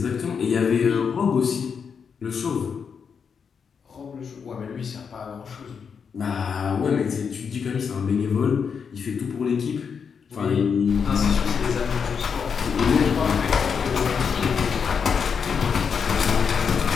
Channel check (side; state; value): right; quieter; 6.4 dB